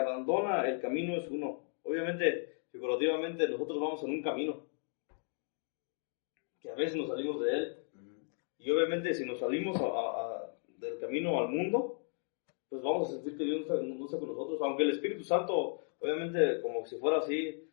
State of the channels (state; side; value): silent; right; 54 dB below the other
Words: el camino es uno. Obviamente, figurativamente, nosotros vamos en un camino, que a veces nos salimos de Él. Y obviamente, si nos salimos del camino al mundo, pues vamos a sentir que Dios no está con nosotros. Aunque el Espíritu Santo, obviamente, como si fuera así,